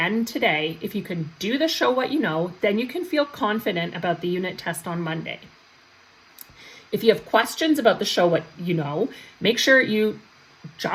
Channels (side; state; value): both; identical; correlation 1.00